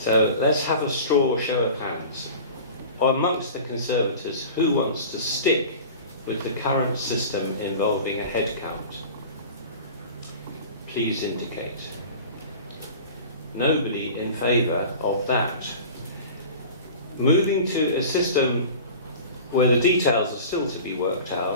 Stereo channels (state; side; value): inverted; both; correlation -0.38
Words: let's have a straw show of hands. Amongst the Conservators, who wants to stick with the current system involving a head count? Please indicate. Nobody in favour of that. Moving to a system where the details are still to be worked